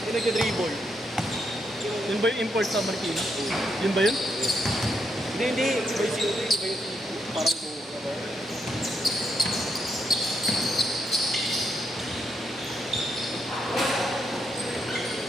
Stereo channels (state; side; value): normal; both; correlation 0.79